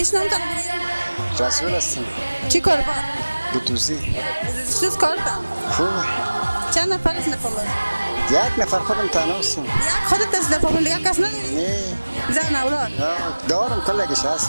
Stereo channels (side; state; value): both; inverted; correlation -1.00